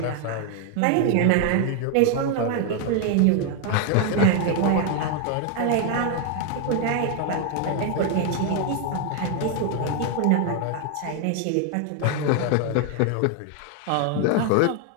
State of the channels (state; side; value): different; both; correlation 0.01